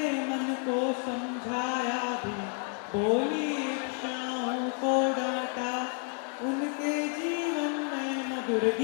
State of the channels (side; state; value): right; quieter; 38.4 dB